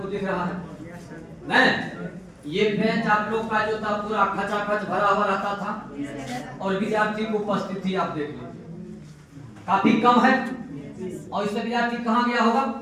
दिख रहा है नहीं। ये बेंच आप लोग का जो था पूरा खचाखच भरा हुआ रहता था, और विद्यार्थी की उपस्थिति आप देख लीजिए काफी कम है। और इससे विद्यार्थी कहाँ गया होगा?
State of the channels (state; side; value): identical; both; correlation 1.00